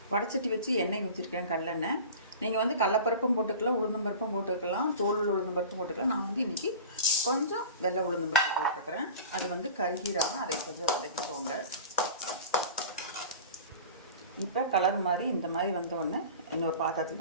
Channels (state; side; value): inverted; both; correlation -0.37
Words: வடைச்சட்டி வச்சு எண்ணெய் ஊற்றிருக்கேன், கடலெண்ணெய். நீங்கள் வந்து கடலப்பருப்பும் போட்டுக்கலாம், உளுந்தம்பருப்பும் போட்டுக்கலாம், தோல் உளுந்தம்பருப்பும் போட்டுக்கலாம். நான் வந்து இன்றைக்கி கொஞ்சம் வெள்ளை உளுந்தம்பருப்பு போட்டுருக்குறேன். அது வந்து கருகீராமல் அதை கொஞ்சம் வதக்கிக்கோங்க. இப்போ கலர் மாதிரி இந்த மாதிரி வந்தோடனே இன்னொரு பாத்திரத்தில்